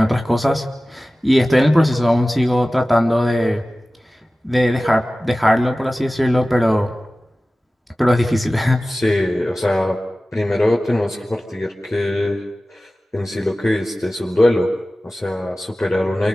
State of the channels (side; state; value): both; normal; correlation 0.96